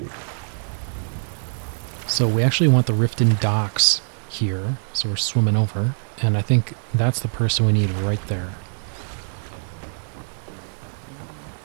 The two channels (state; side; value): silent; left; digital silence